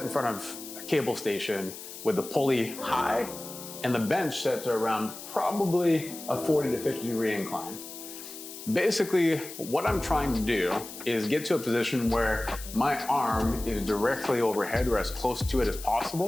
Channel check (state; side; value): noise; left; hiss, 12 dB below the sound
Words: in front of a cable station with the pulley high and the bench set to around probably a 40 to 50 degree incline. Basically, what I'm trying to do is get to a position where my arm is directly overhead or as close to it as